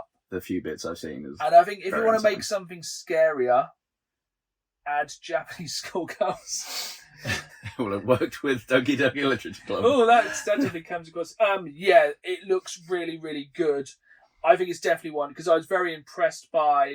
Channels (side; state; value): both; identical; correlation 1.00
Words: The few bits I've seen is. And I think if you want to insane. make something scarier, add Japanese schoolgirls. Well, it worked with Doki Doki Literature Club. Oh, that definitely comes across. Yeah, it looks really, really good. I think it's definitely one because I was very impressed by